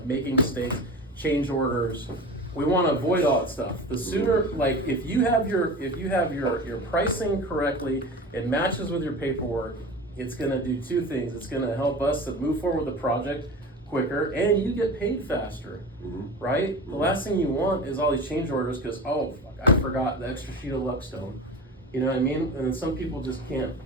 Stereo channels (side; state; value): both; normal; correlation 0.32